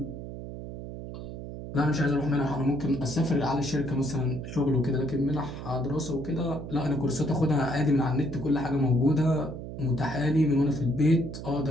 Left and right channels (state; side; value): noise; right; hum, 9 dB below the sound